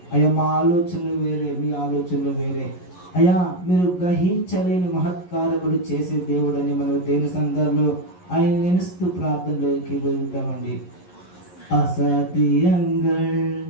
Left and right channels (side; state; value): right; late; 11 ms